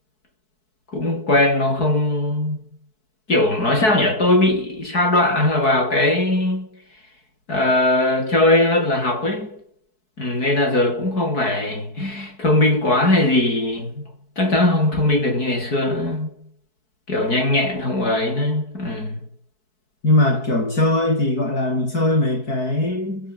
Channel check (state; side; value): late; right; 4.6 ms